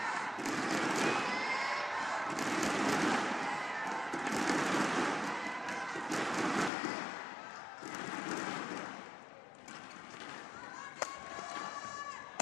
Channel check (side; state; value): right; drops out; at 6.7 s